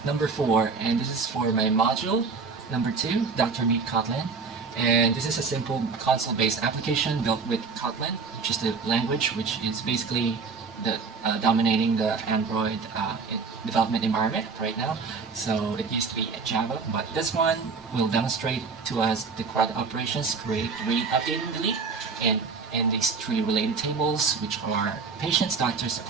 number 4, and this is for my module number 2, DrMeetKotlin. And this is a simple console-based application built with Kotlin, which is the language which is basically dominating the Android development environment right now. So it used to be a Java, but this one will demonstrate to us the CRUD operations: create, read, update, and delete, and these 3 related tables, which are patients, doctors,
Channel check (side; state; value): left; quieter; 4.8 dB